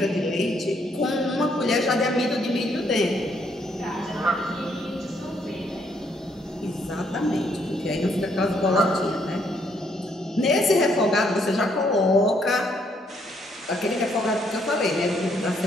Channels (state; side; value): normal; both; correlation 0.71